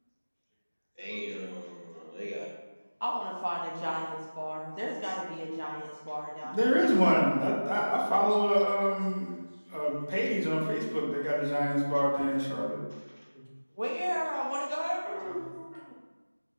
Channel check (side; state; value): both; inverted; correlation -1.00